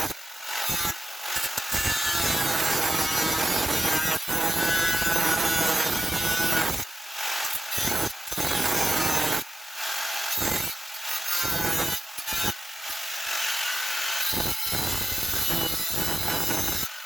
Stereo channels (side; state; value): both; normal; correlation 0.92